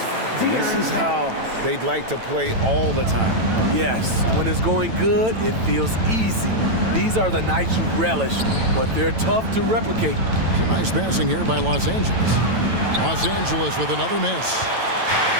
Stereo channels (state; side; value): late; left; 9.0 ms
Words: And this is how they'd like to play all the time. Yes, when it's going good, it feels easy. These are the nights you relish, but they're tough to replicate. It's a nice passing here by Los Angeles. Los Angeles with another miss.